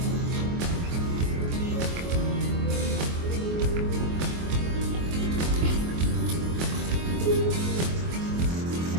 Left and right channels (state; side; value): late; left; 24 ms